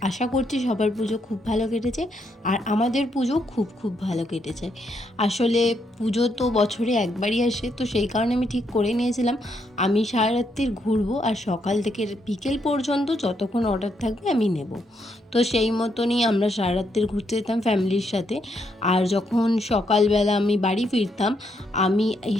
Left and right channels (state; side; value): normal; both; correlation 0.77